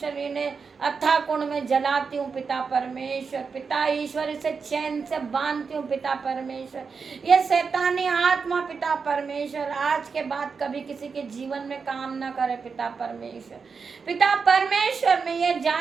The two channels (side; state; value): left; quieter; 5.4 dB